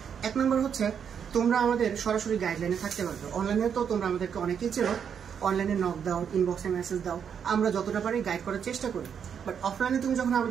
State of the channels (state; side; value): quieter; left; 7.6 dB